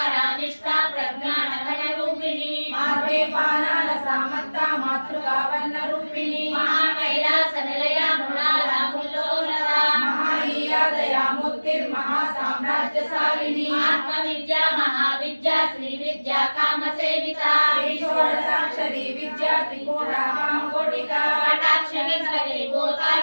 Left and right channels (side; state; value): both; inverted; correlation -1.00